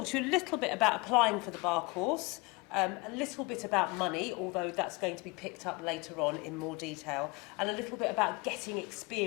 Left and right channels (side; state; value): right; quieter; 26.1 dB